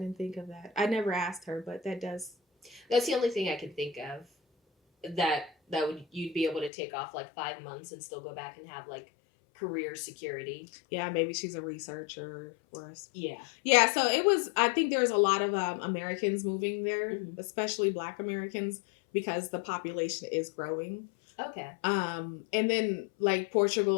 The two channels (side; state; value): right; drops out; at 6.7 s